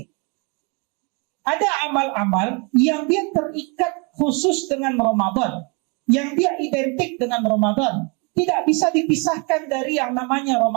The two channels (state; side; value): quieter; left; 31.8 dB